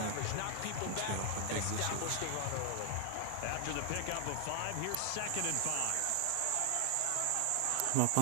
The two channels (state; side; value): different; both; correlation 0.00